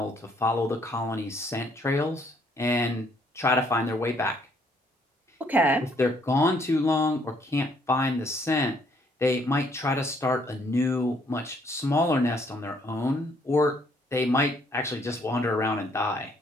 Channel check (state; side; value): normal; both; correlation 0.67